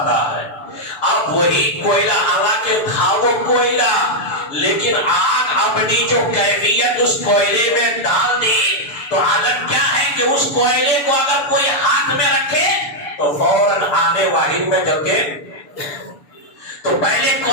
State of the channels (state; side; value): late; right; 7.0 ms